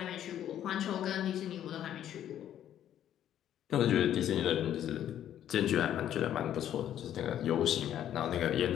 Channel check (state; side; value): quieter; right; 10.9 dB